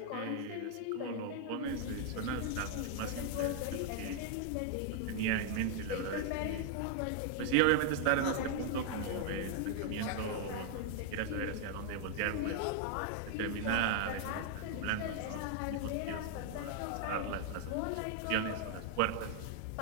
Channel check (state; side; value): different; both; correlation 0.00